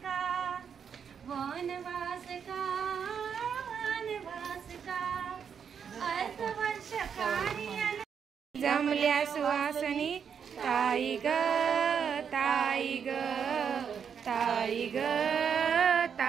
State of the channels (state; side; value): quieter; left; 7.2 dB